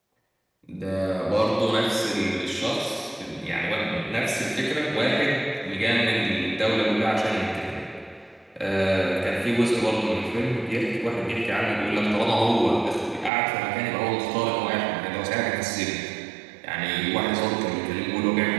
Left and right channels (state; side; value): drops out; left; at 13.3 s